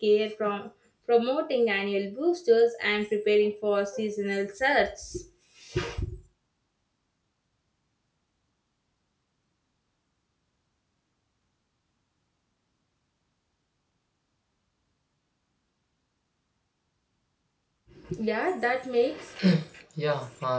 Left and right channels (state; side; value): identical; both; correlation 1.00